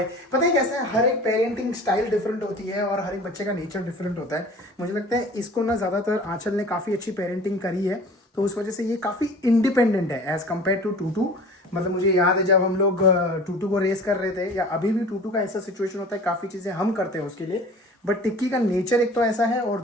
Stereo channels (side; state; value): both; normal; correlation 0.43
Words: पता है कैसा है, हर एक पेरेंटिंग स्टाइल डिफरेंट होती है और हर एक बच्चे का नेचर डिफरेंट होता है। मुझे लगता है इसको ना ज़्यादातर आंचल ने काफ़ी अच्छी पेरेंटिंग करी है, तो उस वजह से ये काफ़ी इंडिपेंडेंट है एज़ कम्पेयर टू टूटू। मतलब मुझे याद है जब हम लोग टूटू को रेस कर रहे थे, या अभी भी टूटू का ऐसा सिचुएशन होता है, काफ़ी चीज़ें हम करते हैं उसके लिए, बट टिक्की का नेचर एक तो ऐसा है, और